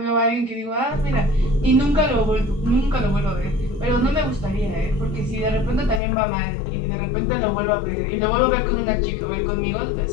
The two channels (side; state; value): right; drops out; at 6.0 s